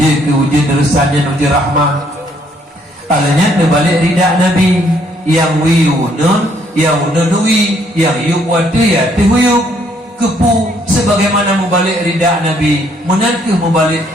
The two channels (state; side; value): normal; both; correlation 0.67